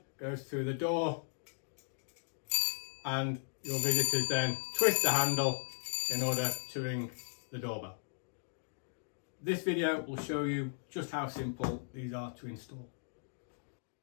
goes through the door and your visitors then twist the handle in order to ring the doorbell. This video will show you just how simple these are to install.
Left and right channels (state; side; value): silent; right; digital silence